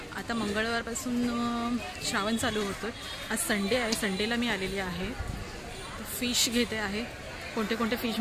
आता मंगळवारपासून श्रावण चालू होतो. आज संडे आहे, संडेला मी आलेली आहे. फिश घेते आहे. कोणते कोणते फिश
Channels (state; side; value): identical; both; correlation 1.00